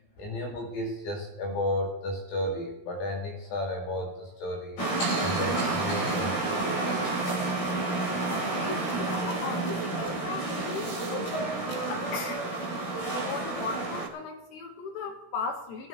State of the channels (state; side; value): late; right; 18 ms